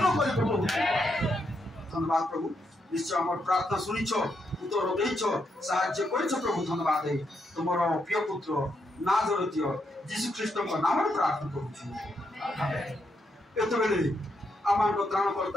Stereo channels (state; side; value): normal; both; correlation 0.80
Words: करि प्रभु। धन्यवाद प्रभु, निश्चय हमर प्रार्थना सुनिछो, उत्तर देइछो, साहाय्य करिछो प्रभु। धन्यवाद है तुमर प्रिय पुत्र नाजरेथ यीशु ख्रीष्ट को नाम रे प्रार्थना करूछु। आमेन। एतो बेले आमान को